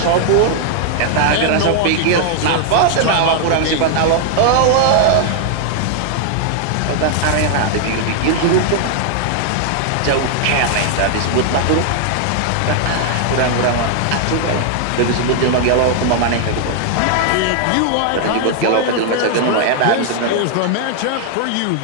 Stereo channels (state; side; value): different; both; correlation 0.00